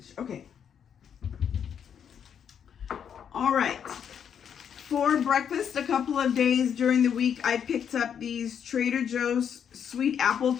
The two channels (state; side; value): quieter; right; 8.1 dB